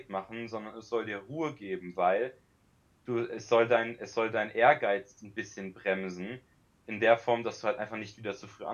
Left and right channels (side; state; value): both; identical; correlation 1.00